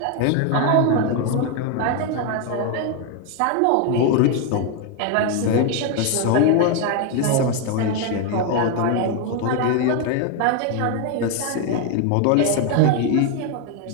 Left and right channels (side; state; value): both; different; correlation 0.01